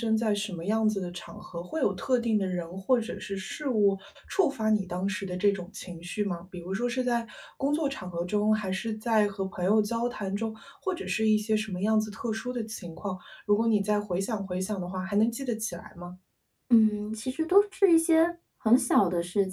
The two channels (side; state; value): both; identical; correlation 1.00